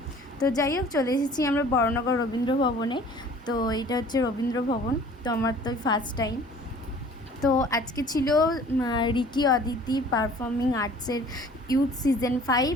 তো যাই হোক, চলে এসেছি আমরা বড়নগর রবীন্দ্র ভবনে। তো এটা হচ্ছে রবীন্দ্র ভবন। তো আমার তো ফার্স্ট টাইম। তো আজকে ছিল রিকি অদিতি পারফর্মিং আর্টসের ইউথ সিজন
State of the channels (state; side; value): normal; both; correlation 0.50